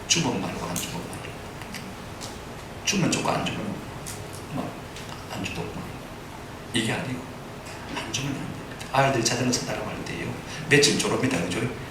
주면 말고 안 주면 말고 주면 주고 안 주면 안 주도 이게 아니고 안 주면 안 됩니다. 아이들이 자전거 산다고 할 때요 며칠 졸업니다. 그죠?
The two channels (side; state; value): both; identical; correlation 1.00